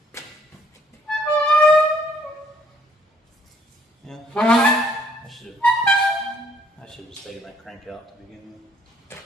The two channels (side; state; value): both; normal; correlation 0.64